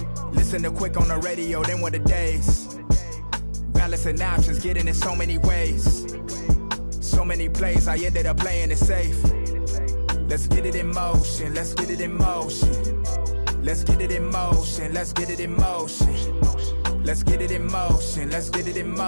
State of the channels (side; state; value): both; inverted; correlation -1.00